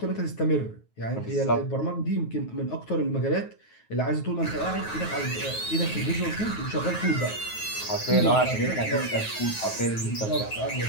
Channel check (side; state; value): right; late; 9.4 ms